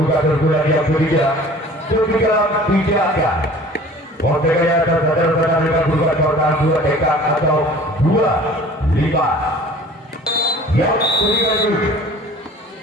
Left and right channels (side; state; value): both; normal; correlation 0.46